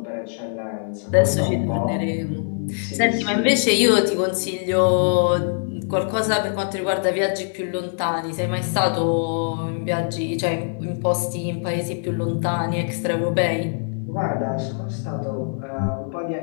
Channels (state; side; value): silent; right; 64 dB below the other